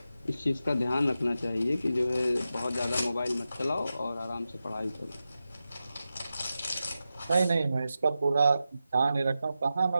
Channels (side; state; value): both; inverted; correlation -0.91